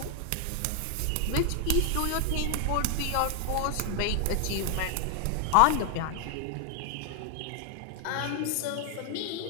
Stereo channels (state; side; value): different; both; correlation 0.00